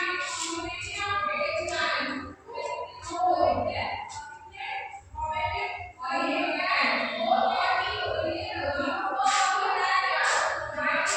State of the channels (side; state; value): both; identical; correlation 1.00